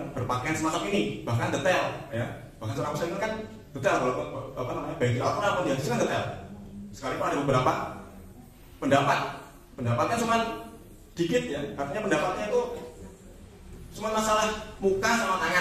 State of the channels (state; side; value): identical; both; correlation 1.00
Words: berpakaian semacam ini, bahkan detail, ya. Bahkan seorang muslim itu kan detail, baik di Al-Quran pun dihadis kan detail. Sekalipun ada beberapa pendapatnya cuma dikit, ya, artinya pendapatnya itu cuma masalah muka sama